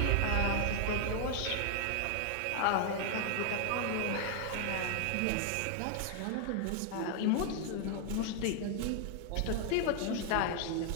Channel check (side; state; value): both; different; correlation 0.00